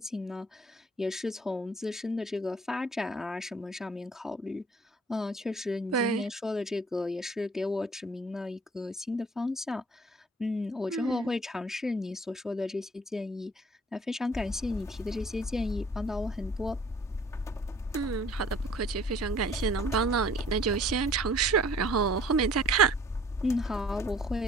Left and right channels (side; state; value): both; normal; correlation 0.53